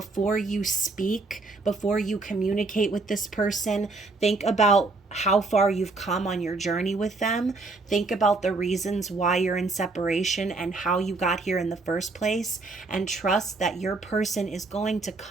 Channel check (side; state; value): left; quieter; 3.5 dB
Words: you speak, before you communicate with this person, think about how far you've come on your journey with them. Think about the reasons why you're in separation and how you got here in the first place, and trust that your person is going to